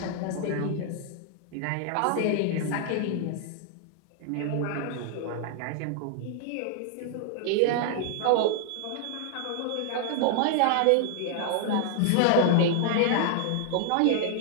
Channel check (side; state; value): both; different; correlation 0.00